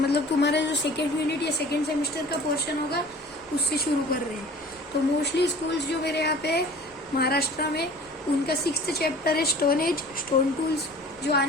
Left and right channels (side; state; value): both; normal; correlation 0.45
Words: मतलब तुम्हारा जो सेकेंड यूनिट या सेकेंड सेमेस्टर का पोर्शन होगा उससे शुरू कर रहे हैं। तो मोस्टली स्कूल्स जो मेरे यहाँ पे है महाराष्ट्र में उनका 6th चैप्टर है स्टोन एज स्टोन टूल्स, जो